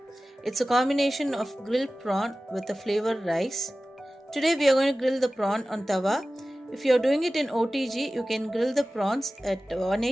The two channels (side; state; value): both; normal; correlation 0.96